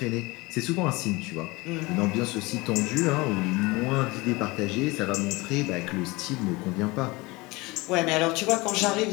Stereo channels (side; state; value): right; quieter; 23.3 dB